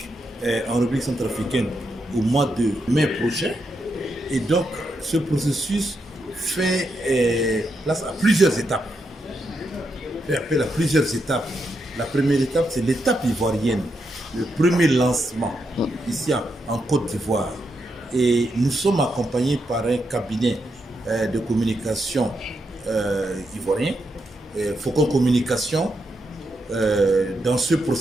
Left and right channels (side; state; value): both; normal; correlation 0.83